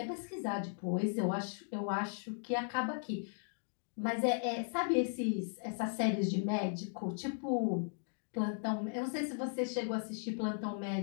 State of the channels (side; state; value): right; silent; digital silence